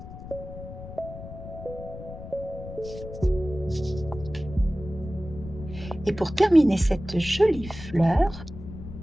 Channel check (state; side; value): noise; left; rumble, 12 dB below the sound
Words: Et pour terminer cette jolie fleur,